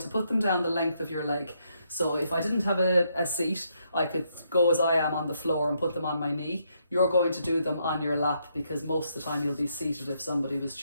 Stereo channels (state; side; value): inverted; both; correlation -0.75